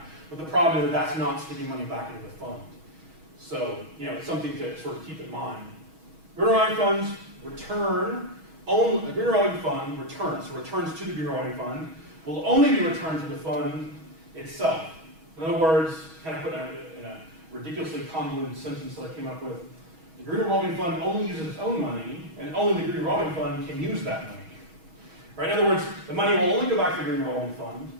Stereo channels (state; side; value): late; left; 6.2 ms